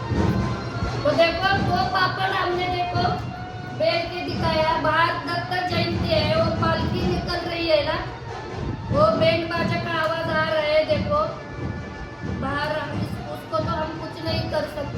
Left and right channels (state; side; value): identical; both; correlation 1.00